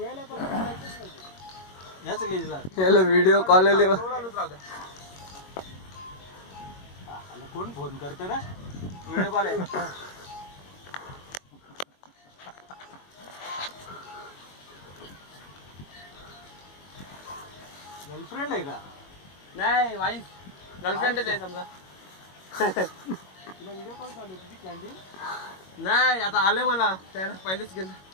पण जायचंच नाही. याच लेजला याला व्हिडिओ कॉल आले बा. कोण फोन करतं रे? व्हिडिओ कॉल आहे. गर्लफ्रेंड आहे का? नाही वाईफ, गर्लफ्रेंडच आहे समजा. तुला व्हिडिओ कॉल चालू तुझी क्लायंटिंग? नाही आता आले मला, त्याला पहिलेच गेलं.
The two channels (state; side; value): late; right; 21 ms